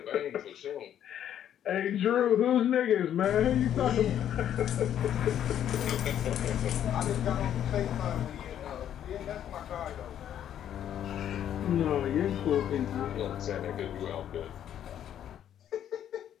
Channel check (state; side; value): quieter; right; 10.3 dB